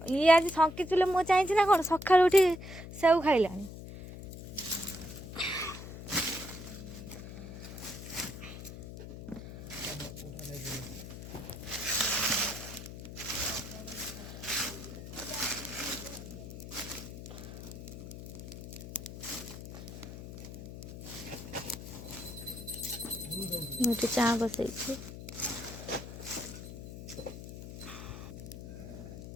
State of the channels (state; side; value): noise; left; hum, 11 dB below the sound